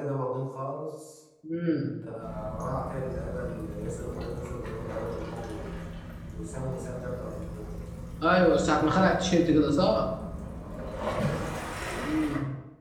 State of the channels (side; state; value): both; identical; correlation 1.00